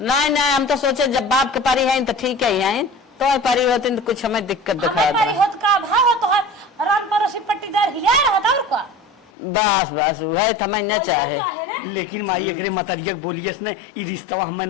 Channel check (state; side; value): drops out; right; at 9.3 s